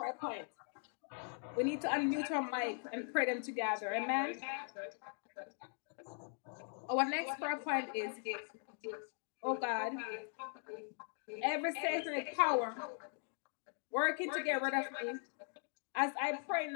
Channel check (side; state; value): right; silent; 51 dB below the other